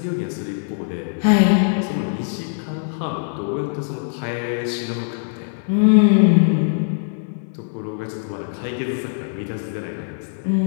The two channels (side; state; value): right; silent; digital silence